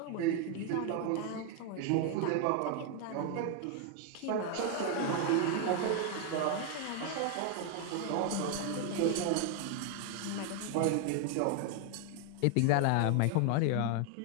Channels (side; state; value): both; different; correlation 0.01